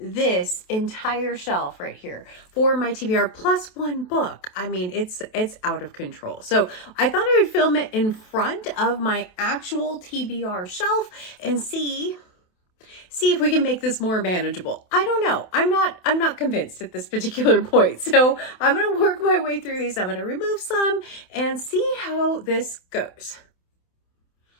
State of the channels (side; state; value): right; late; 28 ms